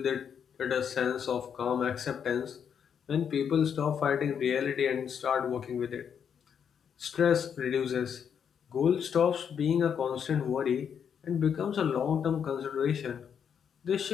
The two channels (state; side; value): quieter; right; 7.7 dB